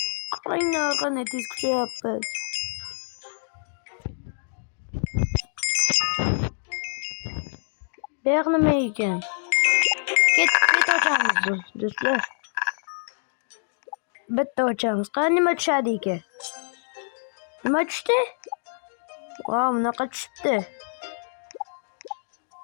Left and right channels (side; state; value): right; silent; digital silence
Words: Qaranglar, qanday tez kuchayapmiz. Bu yoq nima ekan? Ket ochamiz do'stlar. Bitta ochamiz. Qani nima tushadi ekan? Nima tushdi? Wow, bunaqa tushibdi.